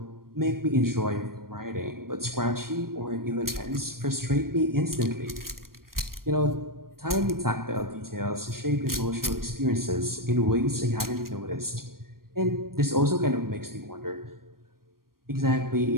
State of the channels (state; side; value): late; left; 0.92 ms